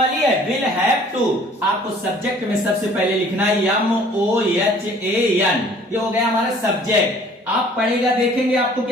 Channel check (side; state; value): both; normal; correlation 0.54